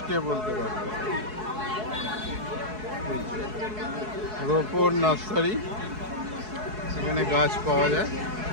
কে বলতে পারবে। রোপর নার্সারি, এখানে গাছ পাওয়া যায়।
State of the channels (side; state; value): left; late; 4.7 ms